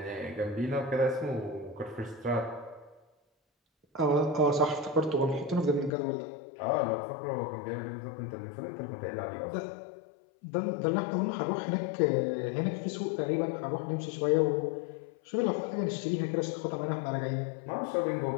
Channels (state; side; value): drops out; right; at 5.9 s